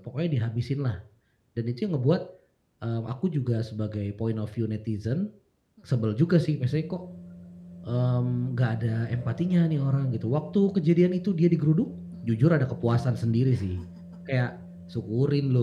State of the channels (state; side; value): identical; both; correlation 1.00